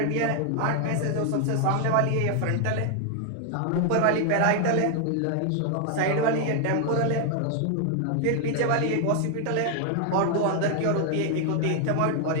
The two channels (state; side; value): different; both; correlation 0.00